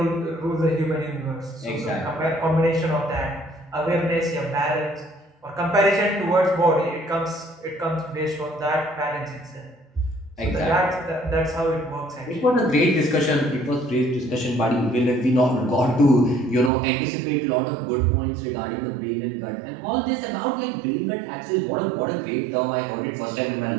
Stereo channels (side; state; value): left; drops out; at 16.7 s